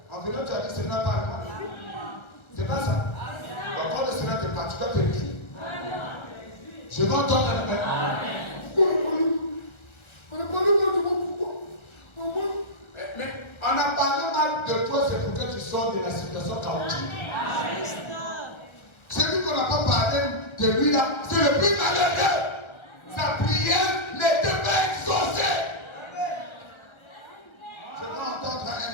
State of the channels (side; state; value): right; late; 1.3 ms